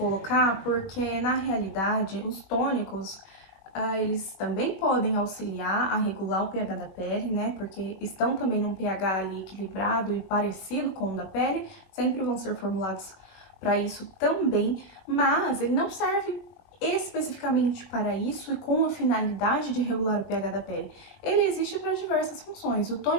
porque, na realidade, os tônicos, eles também podem auxiliar a regular o pH da pele, né? Porque estão também num pH ali equilibrado e parecido com o da pele, sempre vão ser formulados para isso também, mas ele não serve especificamente para isso e com a finalidade de regular o pH da pele. Ele existe para diversas funções. O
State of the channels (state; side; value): late; right; 21 ms